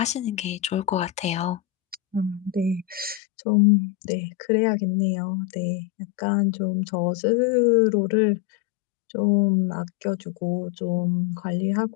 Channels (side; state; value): right; drops out; at 3.2 s